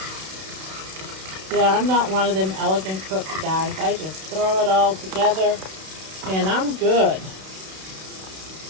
Yeah, I'm not one of them elegant cooks, guys. I just throw it all together and I'm good.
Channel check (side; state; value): left; late; 32 ms